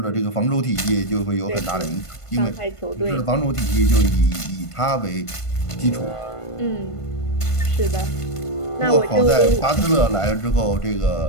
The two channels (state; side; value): late; right; 1.5 ms